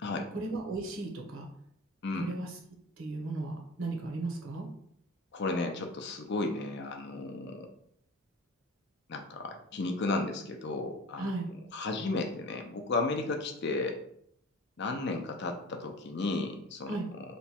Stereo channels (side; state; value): both; normal; correlation 0.39